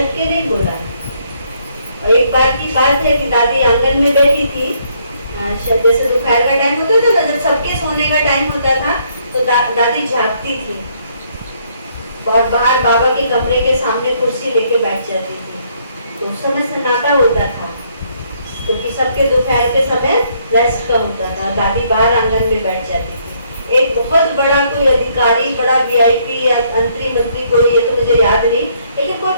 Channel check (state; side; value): inverted; both; correlation -0.69